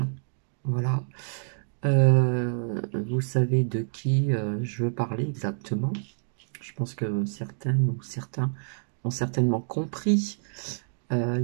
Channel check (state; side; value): silent; left; digital silence